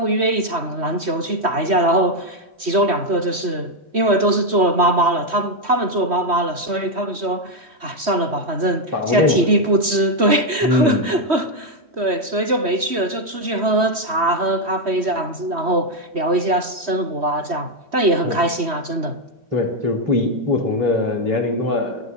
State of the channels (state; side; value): late; left; 3.1 ms